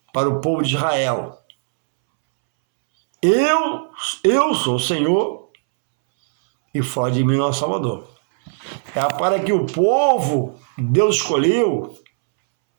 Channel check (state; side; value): silent; left; 67 dB below the other